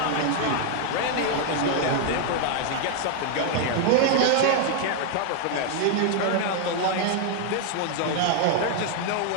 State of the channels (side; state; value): both; different; correlation 0.00